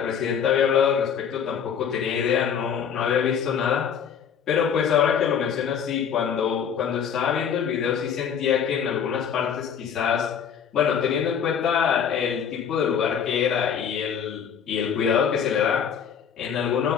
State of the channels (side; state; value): right; quieter; 7.7 dB